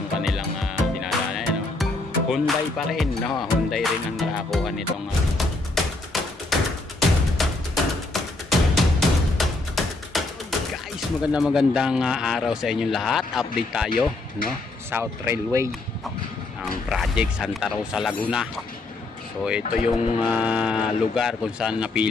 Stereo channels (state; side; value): quieter; right; 3.1 dB